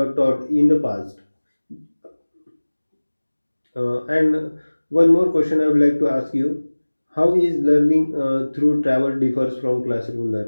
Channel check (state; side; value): inverted; both; correlation -1.00